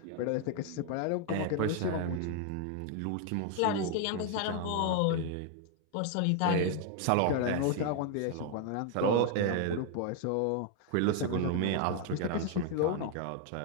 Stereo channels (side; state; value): both; different; correlation 0.00